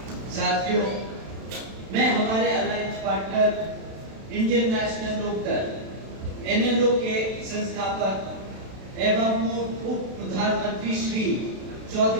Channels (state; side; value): late; left; 32 ms